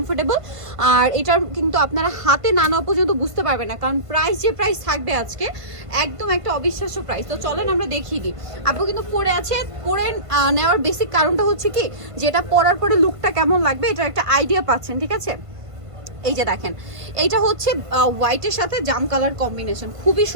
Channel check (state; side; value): late; left; 1.5 ms